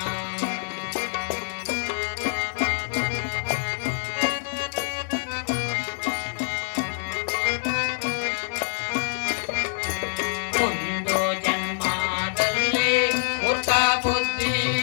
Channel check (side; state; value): right; silent; digital silence